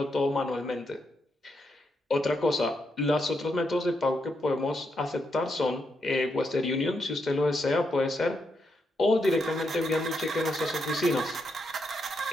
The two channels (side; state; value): both; normal; correlation 0.81